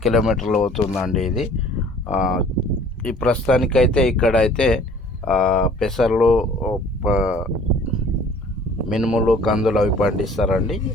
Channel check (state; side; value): normal; both; correlation 0.52